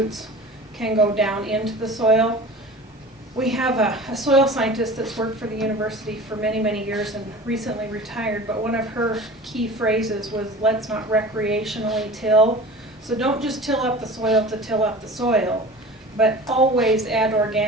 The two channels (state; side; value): normal; both; correlation 0.38